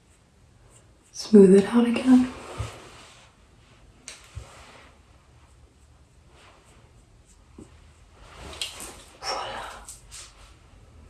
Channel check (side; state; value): both; identical; correlation 1.00